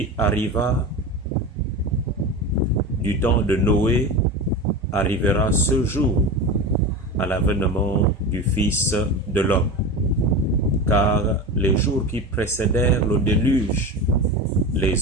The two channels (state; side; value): normal; both; correlation 0.25